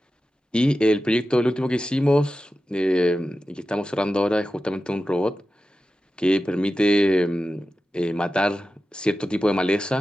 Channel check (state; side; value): normal; both; correlation 0.93